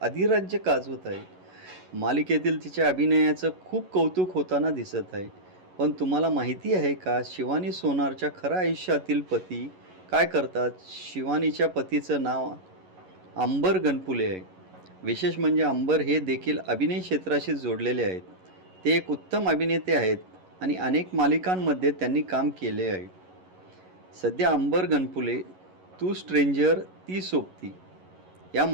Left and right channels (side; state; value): left; late; 11 ms